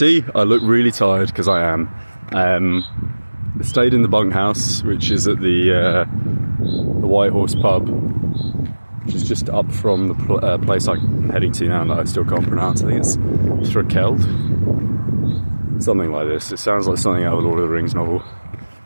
I look really tired because I am. I stayed in the bunkhouse, which is at the White Horse pub, which is just up from the place I'm heading to now that I still can't pronounce. I think it's Thrakeld, something like this. It sounds like something out of a Lord of the Rings novel.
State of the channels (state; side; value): inverted; both; correlation -1.00